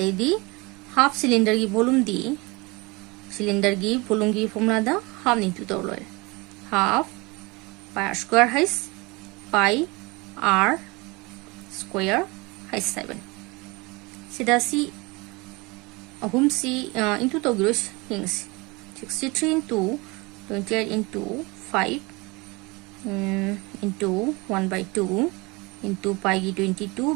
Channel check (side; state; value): left; quieter; 25.6 dB